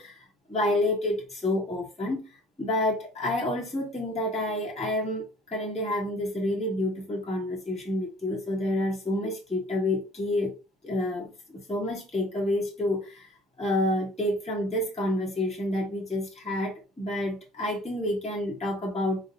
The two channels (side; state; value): both; normal; correlation 0.52